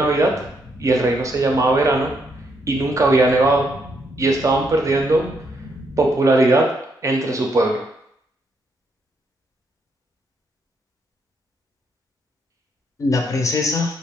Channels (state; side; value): normal; both; correlation 0.75